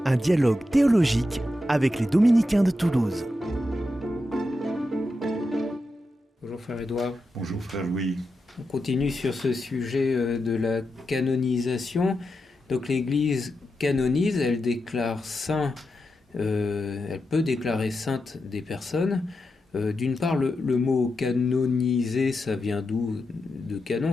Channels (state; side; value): normal; both; correlation 0.88